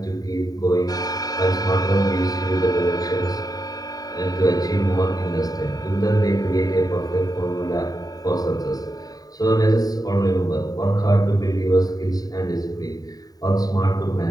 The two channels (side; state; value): right; late; 0.18 ms